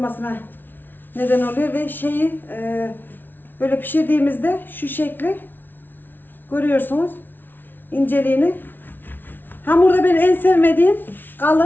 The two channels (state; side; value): late; right; 0.093 ms